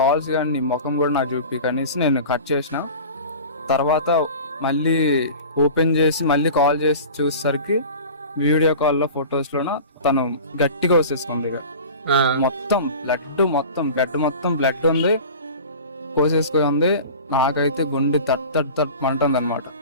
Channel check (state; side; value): inverted; both; correlation -0.37